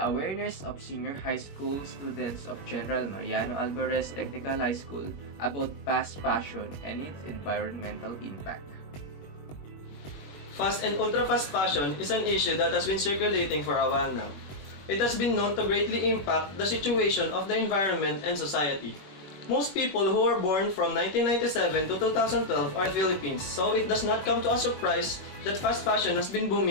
Awareness of Senior High School Students of General Mariano Alvarez Technical High School about Fast Fashion and its Environmental Impact. Fast and ultra-fast fashion is an issue that has been circulating for a while now. It has been known to greatly impact the situation of the environment and society. Most people who were born from 1997 to 2012 are in the Philippines, so it does not come to a surprise that fast fashion has been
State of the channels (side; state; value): right; late; 21 ms